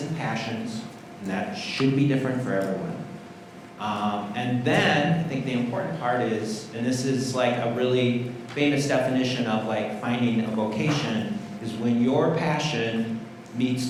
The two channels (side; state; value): both; identical; correlation 1.00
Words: and passions, and that should be different for everyone. And then, I think the important part is, and this is like a really famous definition of like finding a vocation, is when your passion meets